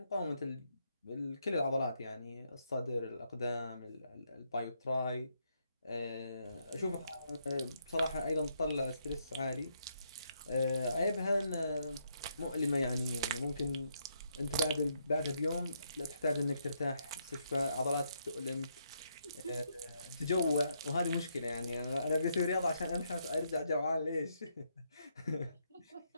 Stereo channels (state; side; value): inverted; both; correlation -0.76